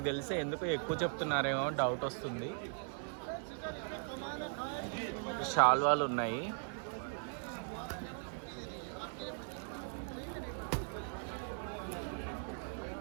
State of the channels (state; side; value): silent; left; 52 dB below the other